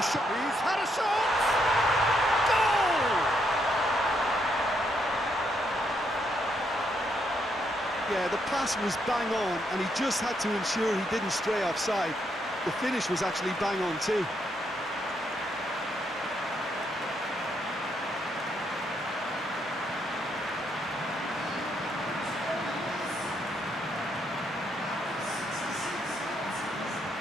shot. He's had a shot! Goal! Yeah, the pass was bang on, and he just had to ensure he didn't stray offside. The finish was actually bang on too.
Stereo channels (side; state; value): both; normal; correlation 0.76